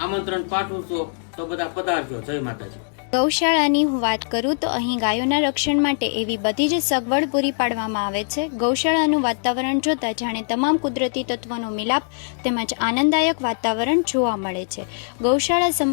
આમંત્રણ પાઠવું છું. તો બધા પધારજો. જય માતાજી. ગૌશાળાની હું વાત કરું તો અહીં ગાયોના રક્ષણ માટે એવી બધી જ સગવડ પૂરી પાડવામાં આવે છે. ગૌશાળાનું વાતાવરણ જોતા જાણે તમામ કુદરતી તત્વોનો મિલાપ તેમજ આનંદદાયક વાતાવરણ જોવા મળે છે. ગૌશાળા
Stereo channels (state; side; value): silent; right; digital silence